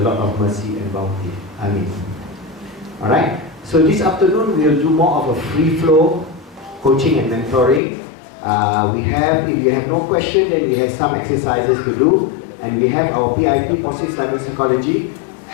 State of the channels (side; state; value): right; drops out; at 7.8 s